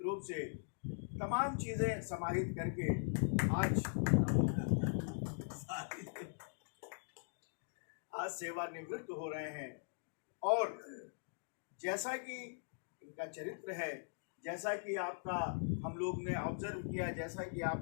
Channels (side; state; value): right; silent; digital silence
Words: रूप से तमाम चीज़ें समाहित करके आज सेवानिवृत्त हो रहे हैं। और जैसा कि इनका चरित्र है, जैसा कि आपका हम लोग ने ऑब्जर्व किया, जैसा कि